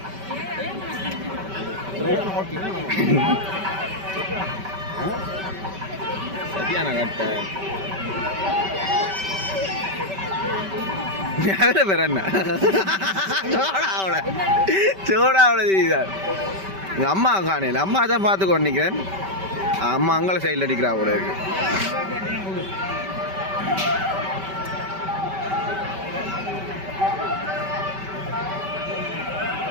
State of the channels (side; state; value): left; late; 5.2 ms